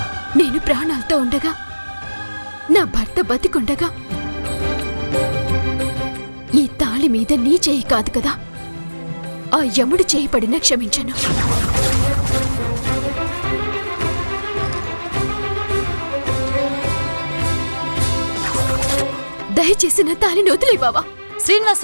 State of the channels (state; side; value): inverted; both; correlation -1.00